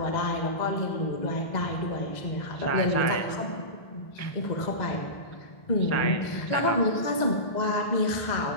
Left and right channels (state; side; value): late; right; 2.0 ms